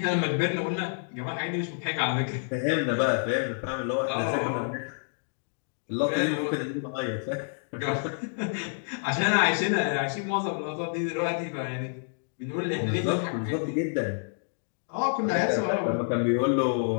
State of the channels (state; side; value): silent; right; digital silence